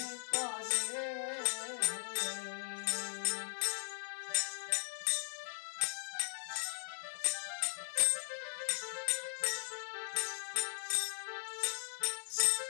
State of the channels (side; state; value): right; silent; 52 dB below the other